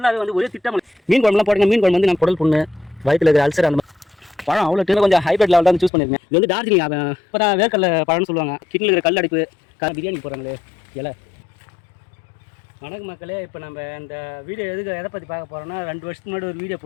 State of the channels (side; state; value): right; drops out; at 5.9 s